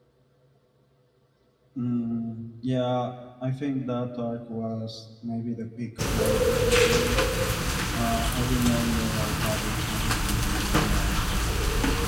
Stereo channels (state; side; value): identical; both; correlation 1.00